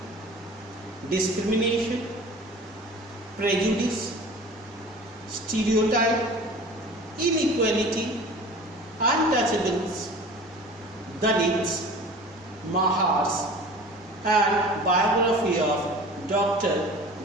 discrimination, prejudice, stereotype, inequality, untouchables, Dalits, Mahars, and biography of Dr.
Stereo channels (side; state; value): both; normal; correlation 0.41